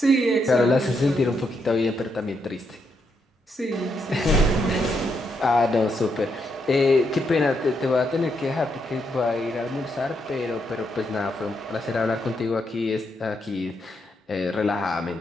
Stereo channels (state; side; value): normal; both; correlation 0.79